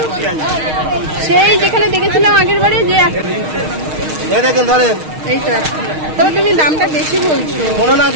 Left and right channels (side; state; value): left; late; 6.4 ms